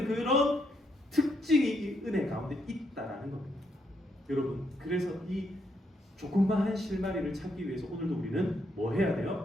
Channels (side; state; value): both; normal; correlation 0.76